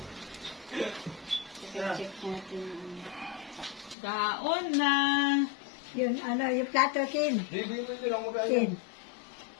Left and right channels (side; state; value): right; drops out; at 4.0 s